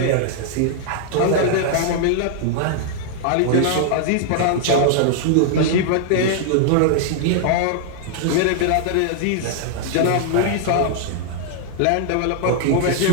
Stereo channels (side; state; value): both; different; correlation -0.01